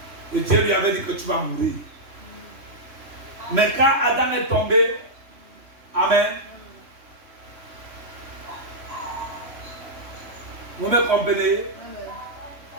Et Dieu lui avait dit que tu vas mourir. Mais quand Adam est tombé, amen. Vous me comprenez? Amen.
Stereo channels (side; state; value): left; late; 3.2 ms